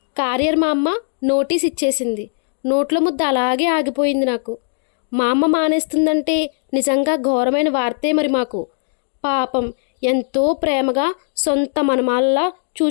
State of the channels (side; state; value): right; silent; digital silence